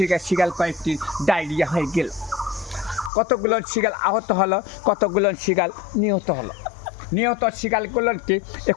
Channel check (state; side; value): drops out; right; at 3.1 s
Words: শিগাল কয়েকটি ডায়রিয়া হয়ে গেল। কতগুলো শিগাল আহত হলো, কতগুলো শিগাল নিহত হলো। নিহত শিগালগুলোকে